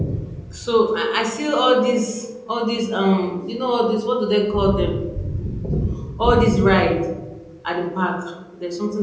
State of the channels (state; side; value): identical; both; correlation 1.00